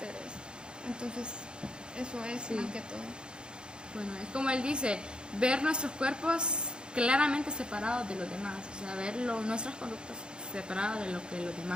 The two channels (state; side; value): late; left; 0.050 ms